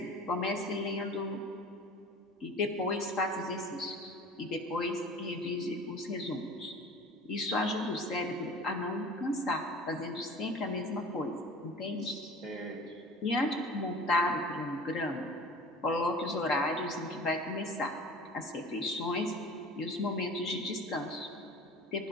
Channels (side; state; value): both; normal; correlation 0.41